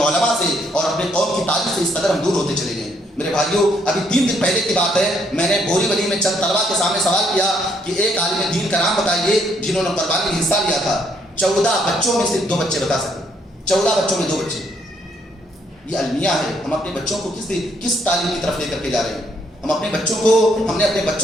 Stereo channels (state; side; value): normal; both; correlation 0.71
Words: علماء سے اور اپنے قوم کی تاریخ سے اس قدر ہم دور ہوتے چلے گئے۔ میرے بھائیوں، ابھی 3 دن پہلے کی بات ہے، میں نے بوری ولی میں چند طلبا کے سامنے سوال کیا کہ ایک عالم دین کا نام بتائیے جنہوں نے قربانی میں حصہ لیا تھا۔ 14 بچوں میں صرف 2 بچے بتا سکے، 14 بچوں میں 2 بچے۔ یہ المیہ ہے، ہم اپنے بچوں کو کس تعلیم کی طرف لے کر کے جا رہے ہیں؟ ہم نے اپنے